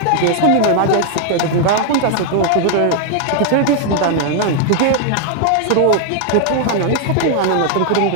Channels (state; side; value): different; both; correlation 0.00